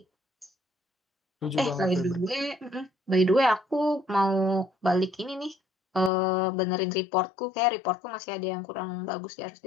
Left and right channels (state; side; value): drops out; right; at 6.1 s